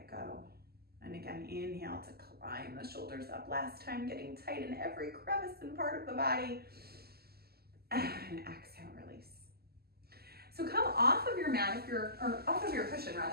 go. And again, inhale to climb the shoulders up. Last time, getting tight in every crevice and part of the body. And exhale, release. So come off of your mat, or off of your cushion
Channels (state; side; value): late; left; 0.46 ms